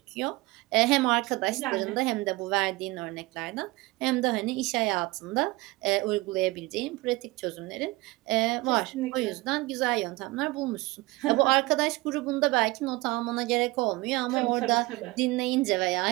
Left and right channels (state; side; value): quieter; left; 21.8 dB